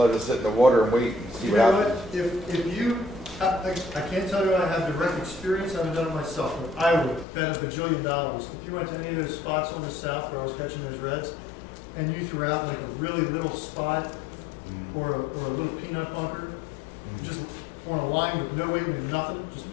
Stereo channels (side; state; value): right; drops out; at 7.2 s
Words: it sit in the water and wait and see You what know happens. what, if you, I can't tell you I have direct experience, I haven't done it myself, but I would bet $1 bajillion. If you went to any of those spots on the south where I was catching those reds, and you threw out like a really little spot or a little peanut bunker, just on a line with no weight and nothing, just